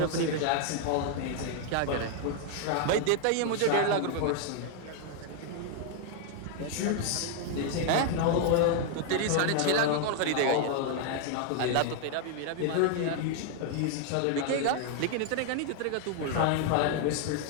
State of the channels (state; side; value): different; both; correlation 0.00